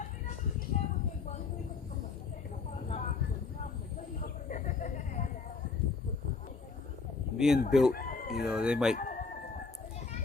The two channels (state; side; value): quieter; right; 4.6 dB